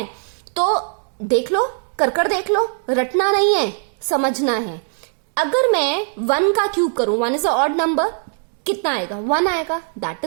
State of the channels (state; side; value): silent; left; 63 dB below the other